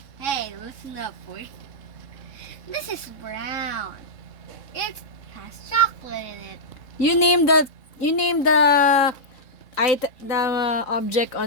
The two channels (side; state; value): right; late; 3.6 ms